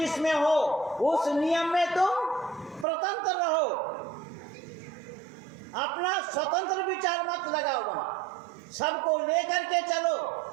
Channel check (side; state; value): left; drops out; at 2.9 s